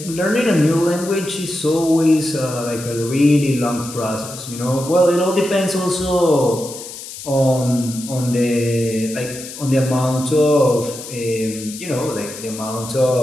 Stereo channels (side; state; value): left; noise; hiss, 12 dB below the sound